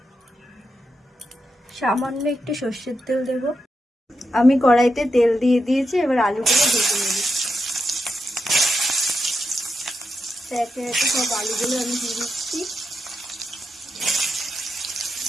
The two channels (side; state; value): both; normal; correlation 0.86